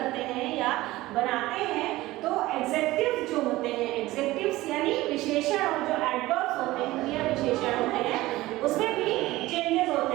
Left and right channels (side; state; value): left; quieter; 18.0 dB